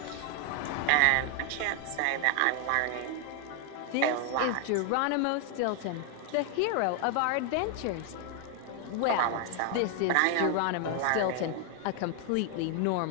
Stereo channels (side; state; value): both; different; correlation 0.00